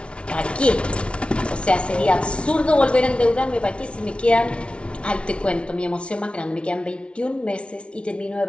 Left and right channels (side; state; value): right; late; 0.059 ms